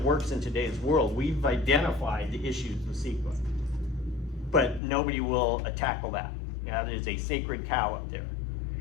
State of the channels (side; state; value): right; drops out; at 4.8 s